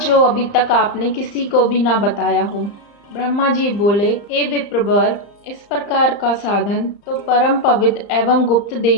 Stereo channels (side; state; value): right; late; 35 ms